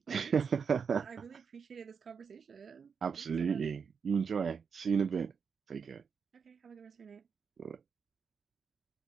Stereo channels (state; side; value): quieter; left; 6.2 dB